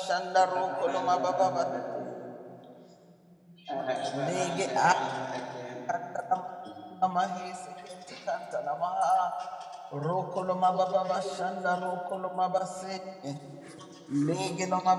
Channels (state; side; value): identical; both; correlation 1.00